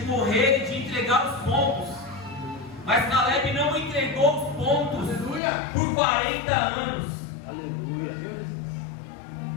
morrer e de entregar os pontos. Mas Caleb não entregou os pontos. Aleluia. Por 40 anos. Aleluia.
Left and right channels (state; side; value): drops out; right; at 5.4 s